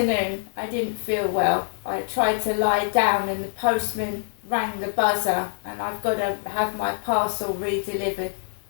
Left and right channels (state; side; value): silent; right; 62 dB below the other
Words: I didn't feel well. I tried to lie down and the postman rang the buzzer, and I've got to have my parcel re-delivered.